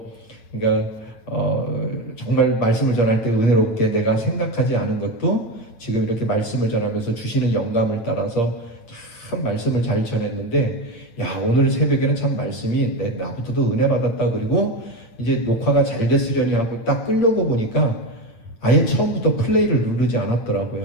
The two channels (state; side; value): late; right; 8.6 ms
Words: 그러니까 정말 말씀을 전할 때 은혜롭게 내가 생각하지 않은 것도 지금 이렇게 말씀을 전하면서 주시는 영감을 따라서 참 말씀을 잘 전했는데 야 오늘 새벽에는 참 말씀이 나부터도 은혜 받았다. 그리고 이제 녹화가 잘 됐으려니 하고 딱 끌려고 보니까 아예 처음부터 플레이를 누르지